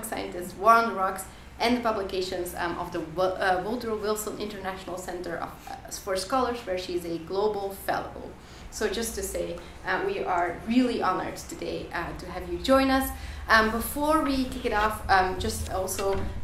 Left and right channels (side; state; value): both; identical; correlation 1.00